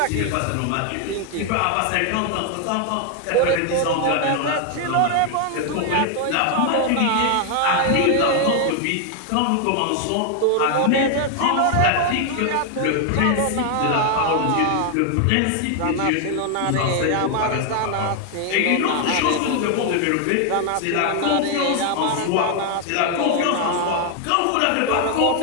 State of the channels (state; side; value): different; both; correlation 0.00